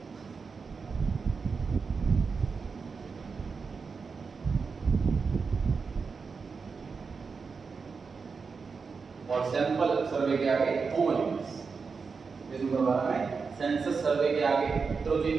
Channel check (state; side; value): quieter; left; 5.1 dB